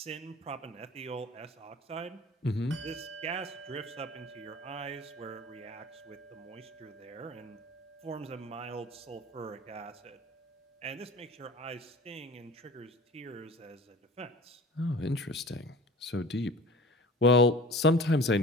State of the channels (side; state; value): both; normal; correlation 0.42